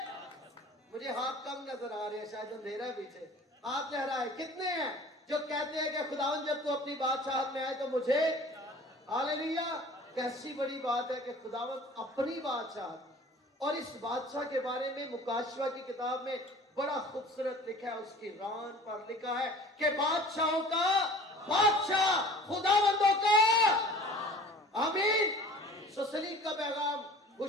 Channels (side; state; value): both; normal; correlation 0.45